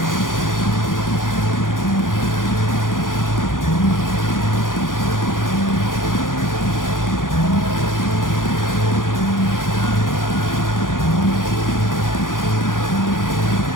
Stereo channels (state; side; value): late; right; 0.89 ms